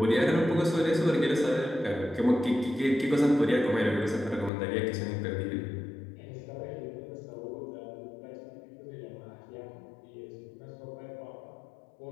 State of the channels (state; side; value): drops out; right; at 4.5 s